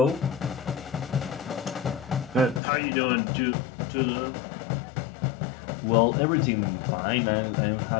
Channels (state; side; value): drops out; right; at 2.6 s